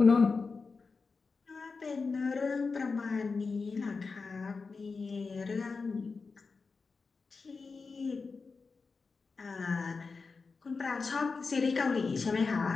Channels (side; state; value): right; quieter; 4.5 dB